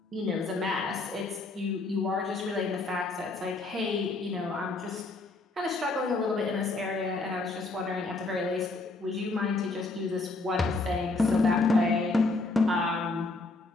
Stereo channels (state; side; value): quieter; right; 3.4 dB